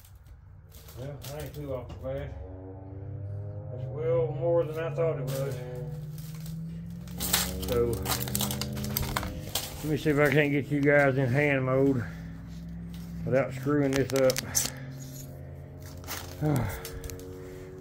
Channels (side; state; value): both; identical; correlation 1.00